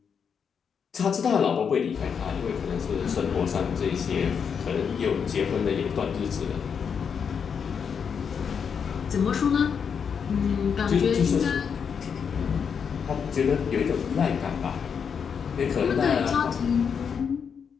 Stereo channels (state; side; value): quieter; right; 6.8 dB